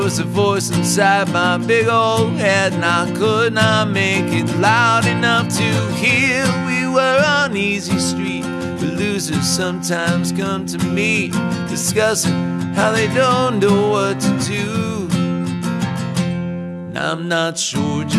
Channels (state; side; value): identical; both; correlation 1.00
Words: a voice inside my big old head, and I could not make it loud enough to hear. We were on easy street, but losers sometimes come to me, discussing how they don't know what to do. And I'm not sure